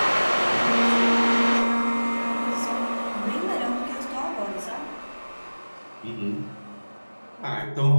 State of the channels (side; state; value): both; inverted; correlation -1.00